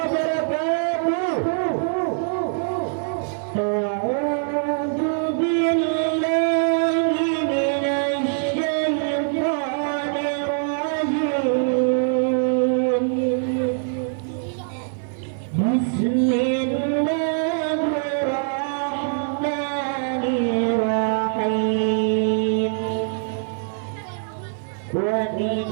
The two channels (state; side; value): silent; left; 57 dB below the other